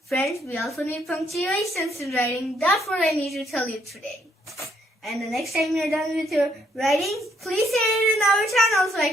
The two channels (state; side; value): normal; both; correlation 0.70